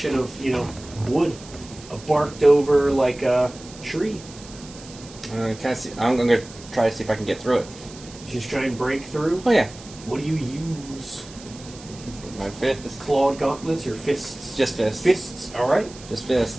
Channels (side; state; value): right; noise; hiss, 18 dB below the sound